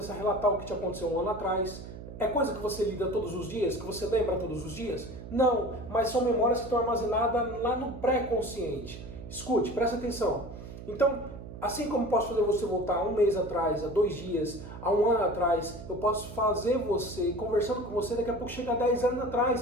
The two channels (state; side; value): noise; right; hum, 12 dB below the sound